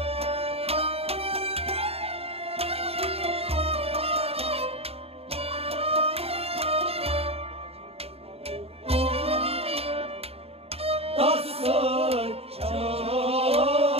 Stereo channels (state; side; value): late; left; 0.29 ms